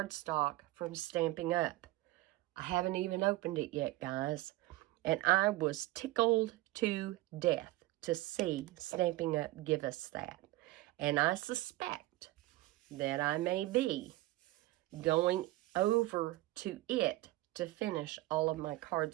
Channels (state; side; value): quieter; left; 18.1 dB